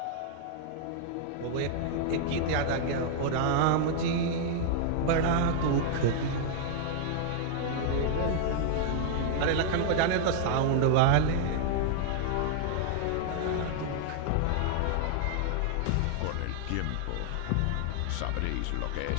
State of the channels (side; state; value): both; different; correlation -0.01